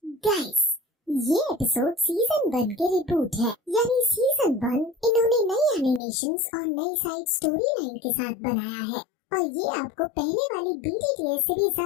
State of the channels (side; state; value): right; drops out; at 6.0 s